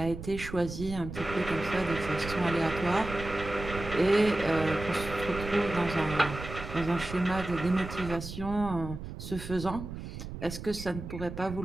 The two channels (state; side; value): noise; right; rumble, 9 dB below the sound